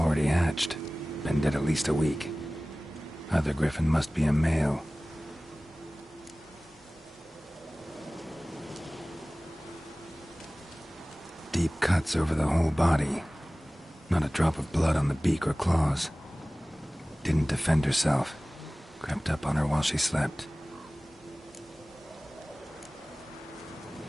hatched. Been dead at least a week. Other Griffin must be a male. Deep cuts over the whole body. Not a drop of blood on the beak or claws. Didn't defend herself. Crept up on her while she slept.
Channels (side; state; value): both; normal; correlation 0.98